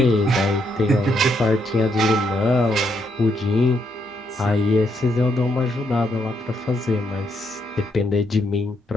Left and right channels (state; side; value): normal; both; correlation 0.76